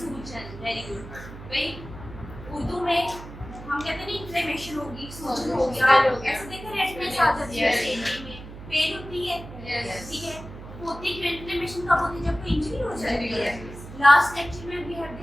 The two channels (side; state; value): right; noise; hum, 14 dB below the sound